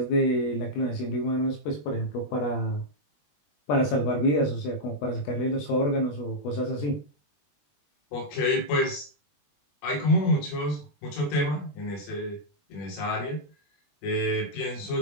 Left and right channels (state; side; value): late; right; 20 ms